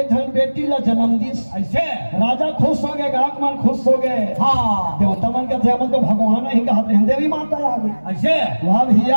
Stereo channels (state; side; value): inverted; both; correlation -1.00